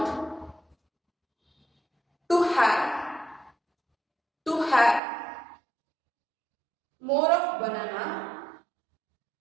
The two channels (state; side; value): drops out; left; at 5.0 s